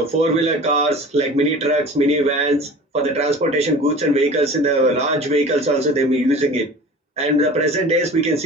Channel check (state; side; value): normal; both; correlation 0.40